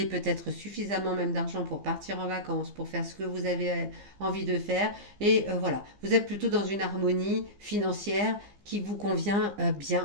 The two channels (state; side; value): late; left; 15 ms